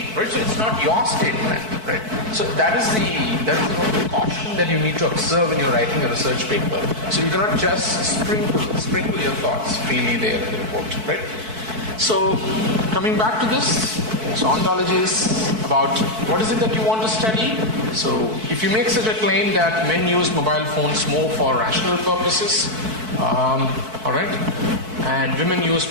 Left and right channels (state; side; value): late; left; 4.6 ms